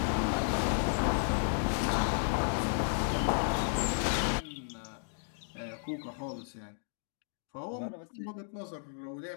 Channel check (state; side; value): silent; right; digital silence